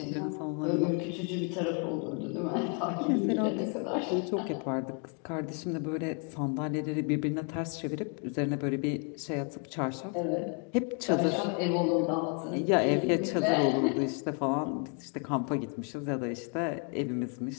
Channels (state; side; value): quieter; right; 37.7 dB